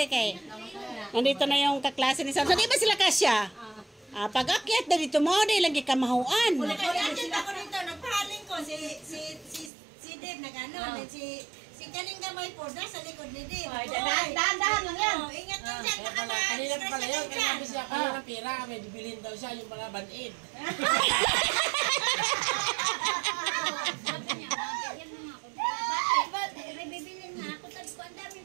Kay, nandito na yung kaklase ni Sam. So, di ba sila kasya? Pag akyat na dito mo, di lagi kamahuan. Nag-akyat ako dito, nagpahaling ko. Si Dave nag-ano. Si kaning gamay po, nasa likod ni Dave. Dahan-dahan lang yan. Ingat lang dyan, nakamahan. Kanina pa pala yun, kaya nabi siya kaya ng pera, may bibilhin daw siya yung mga band-aid. May bibilin na ako. Sabi ko, ang daming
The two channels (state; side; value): drops out; left; at 9.7 s